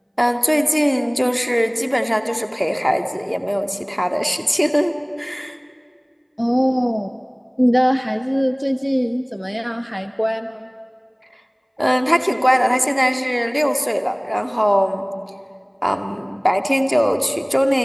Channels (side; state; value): both; identical; correlation 1.00